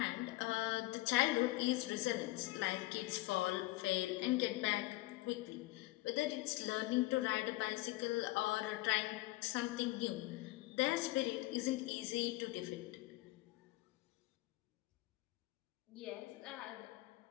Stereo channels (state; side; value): quieter; right; 19.5 dB